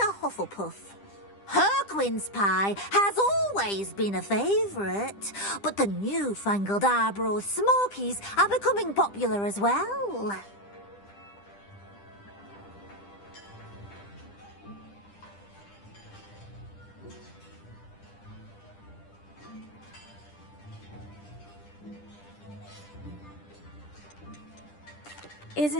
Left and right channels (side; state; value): right; late; 10 ms